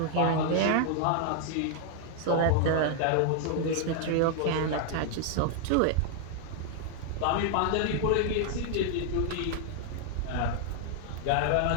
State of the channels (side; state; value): both; different; correlation 0.00